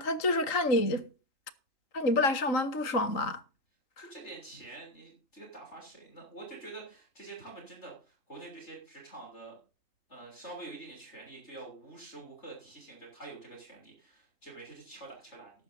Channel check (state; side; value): late; right; 3.8 ms